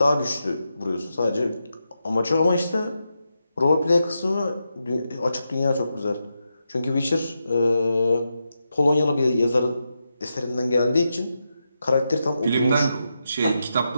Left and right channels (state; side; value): inverted; both; correlation -0.87